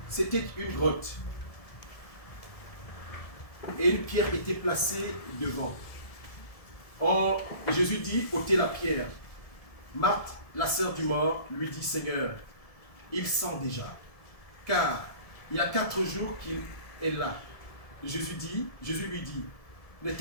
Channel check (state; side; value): late; right; 1.7 ms